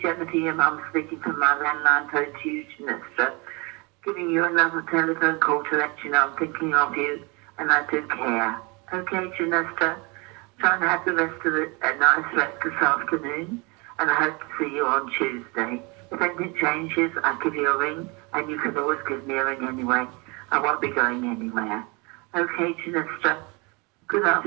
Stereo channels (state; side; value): quieter; left; 28.7 dB